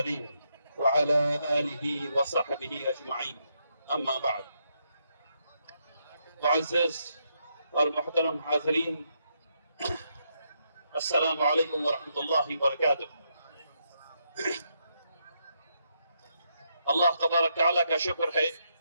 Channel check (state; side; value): inverted; both; correlation -0.79